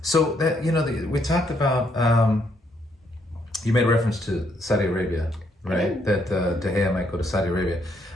So that we talked about. You made reference to Saudi Arabia, right? That De Gea might go to Saudi Arabia.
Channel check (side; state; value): both; normal; correlation 0.72